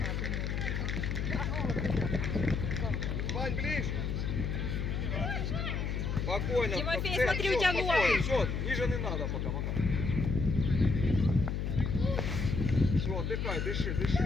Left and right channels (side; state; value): left; noise; hum, 1 dB below the sound